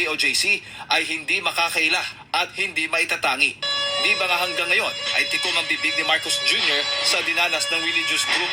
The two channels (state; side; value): identical; both; correlation 1.00